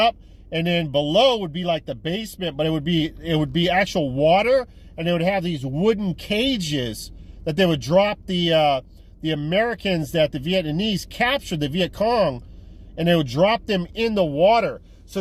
and then below would be like the basement, but it would be actual water, and they would have these wooden cages that they would drop the Americans that the Vietnamese captured, the Viet Cong, and they would drop them in the water. So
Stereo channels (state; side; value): identical; both; correlation 1.00